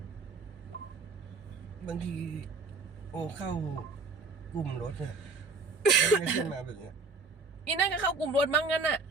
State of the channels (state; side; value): quieter; left; 4.0 dB